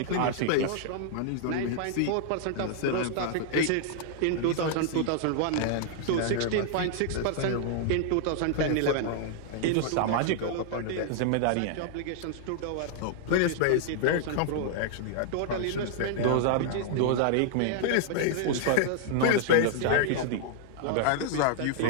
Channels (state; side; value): different; both; correlation -0.01